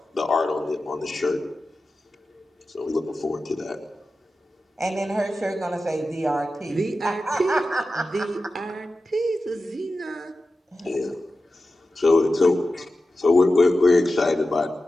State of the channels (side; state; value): both; normal; correlation 0.93